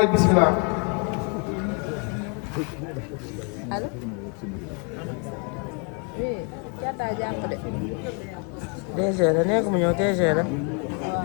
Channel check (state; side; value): quieter; right; 35.4 dB